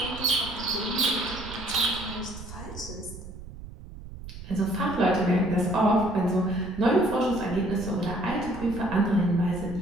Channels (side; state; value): right; noise; rumble, 13 dB below the sound